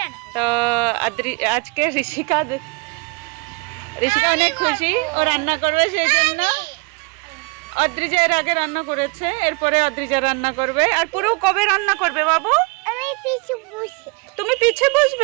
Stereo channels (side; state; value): left; quieter; 29.5 dB